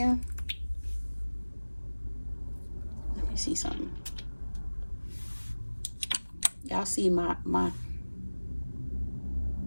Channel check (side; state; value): both; inverted; correlation -1.00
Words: Let me see something. Y'all see my